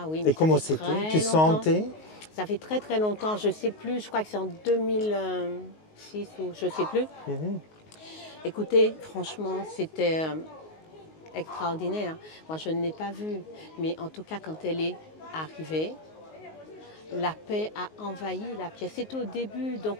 oui. Mais et comment c'était? Tu sentais? Ça fait très très longtemps, je ne sais plus, je crois que c'est en 2006 ou je ne sais plus. Écoutez, franchement, c'était extraordinaire. Moi, je ne l'ai pas vue, mais en tout cas, quand elle est arrivée, la paix a envahi la pièce. C'était au début,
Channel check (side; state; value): right; late; 19 ms